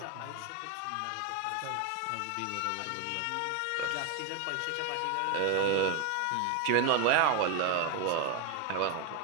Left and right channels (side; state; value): both; different; correlation 0.02